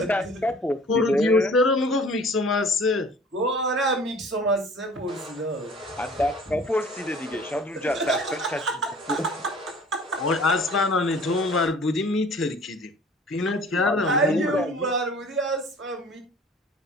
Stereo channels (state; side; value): normal; both; correlation 0.48